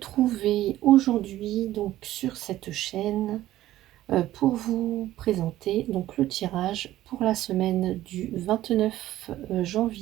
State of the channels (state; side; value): quieter; left; 14.5 dB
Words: aujourd'hui donc sur cette chaîne pour vous présenter donc le tirage pour la semaine du 29